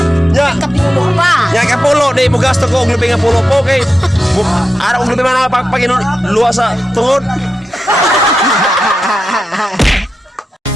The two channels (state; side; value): normal; both; correlation 0.89